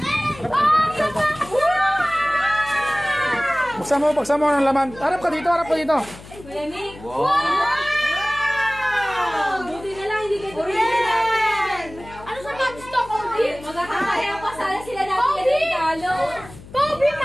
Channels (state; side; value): noise; left; hum, 18 dB below the sound